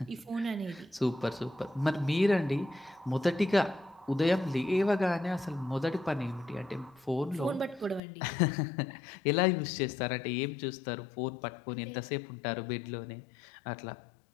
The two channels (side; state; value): right; drops out; at 8.0 s